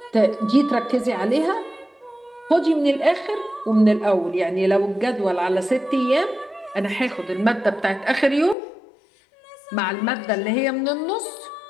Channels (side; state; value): right; drops out; at 8.6 s